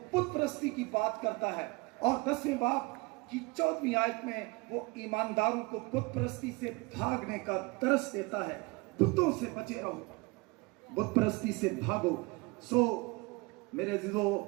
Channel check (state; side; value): quieter; left; 26.5 dB